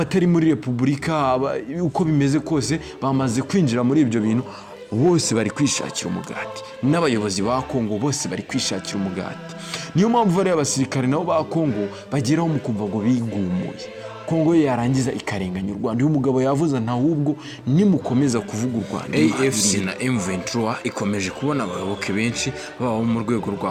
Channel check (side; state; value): both; identical; correlation 1.00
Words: muri repubulika uko bimeze kose bamaze kwinjira muri ibyo bintu, bose bari kwishakira umugati, n'abayobozi ba Kongo bose bari kwishakira umugati. Niyo mpamvu bari abasirikare nabo ba Kongo bageraho mu kumva ngo bigumuye, Kongo yarangiza ikarenganya u Rwanda. Uyu mugabo yavuze ntahubwo nimukomeza kuvuga u Rwanda. AFC na M23 ikomeje kubona abayoboke benshi baba mu rwego